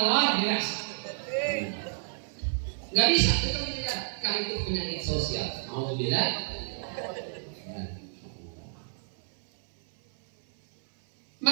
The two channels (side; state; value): left; silent; 57 dB below the other